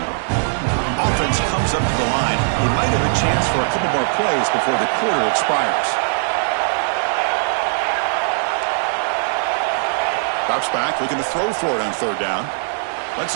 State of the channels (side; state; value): left; silent; 66 dB below the other